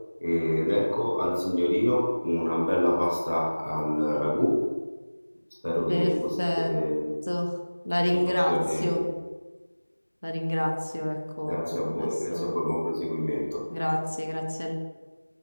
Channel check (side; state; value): both; inverted; correlation -1.00